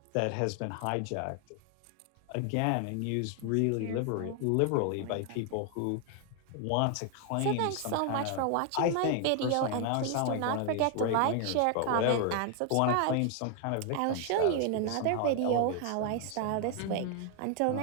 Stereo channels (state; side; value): different; both; correlation 0.00